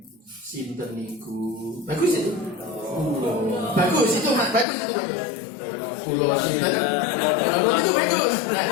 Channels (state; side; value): drops out; right; at 4.7 s